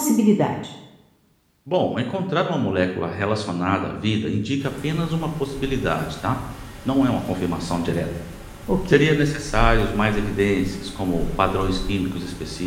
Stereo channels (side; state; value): both; identical; correlation 1.00